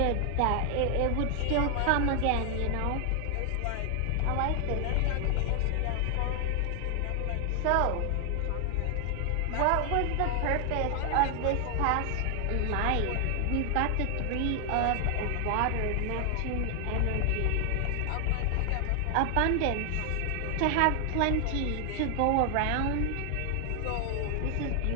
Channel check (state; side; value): different; both; correlation 0.00